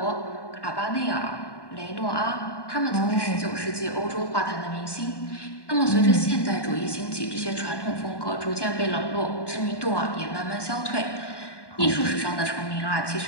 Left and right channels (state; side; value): late; right; 1.2 ms